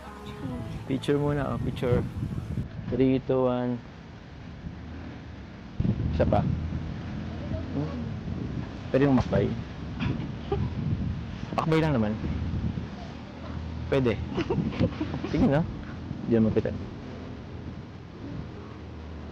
Picture muna. Picture. 3, 2, 1. Isa pa. Pwede yung makbay. Makbay lang naman. Pwede. Sige na. Diyan mo kita.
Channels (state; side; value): identical; both; correlation 1.00